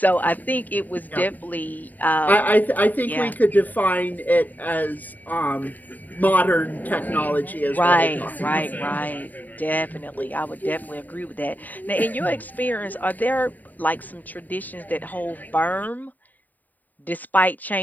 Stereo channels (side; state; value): right; late; 0.083 ms